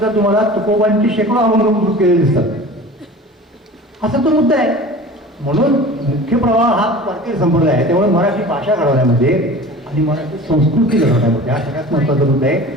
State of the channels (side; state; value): both; normal; correlation 0.39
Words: तुम्हाला तुकोबांची शेकडो अभंग केलेले दिसतात. असा तो मुद्दा आहे. म्हणून मुख्य प्रवाह हा वारकरी संप्रदाय आहे. त्यामुळे मराठी भाषा घडवण्यामध्ये आणि मराठी संस्कृती घडवण्यामध्ये हा सगळ्यात महत्त्वाचा मुद्दा आहे.